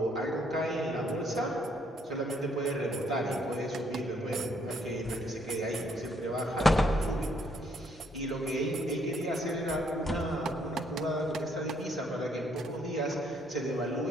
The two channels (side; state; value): both; normal; correlation 0.69